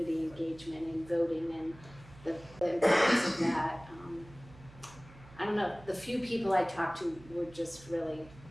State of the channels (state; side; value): noise; right; hum, 20 dB below the sound